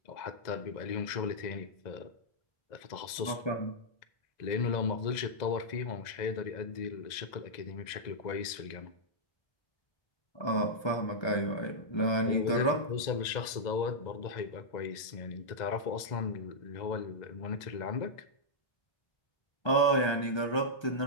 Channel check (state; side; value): late; right; 2.0 ms